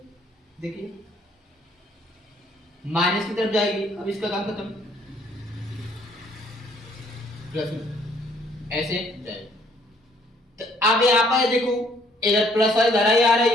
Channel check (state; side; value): normal; both; correlation 0.63